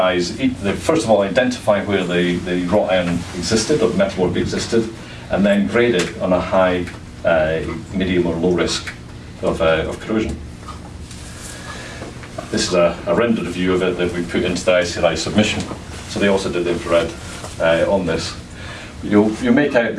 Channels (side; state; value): both; identical; correlation 1.00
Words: first of all identify where the wrought iron existed or metalwork existed, and then grade it on a high, medium or low risk of corrosion. This is a rendered view of it that we put into the ICRI submission. So they also did the infrared on this. You make out